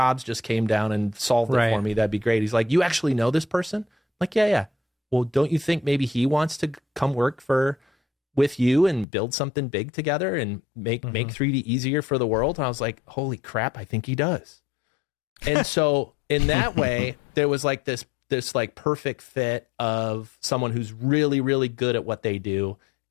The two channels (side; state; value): right; drops out; at 9.1 s